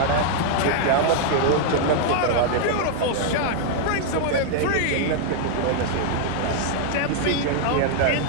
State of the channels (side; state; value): both; different; correlation 0.00